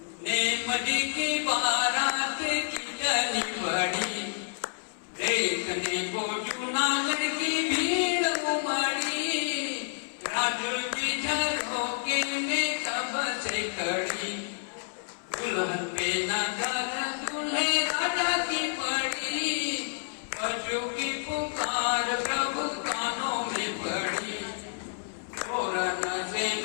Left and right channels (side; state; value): right; silent; 58 dB below the other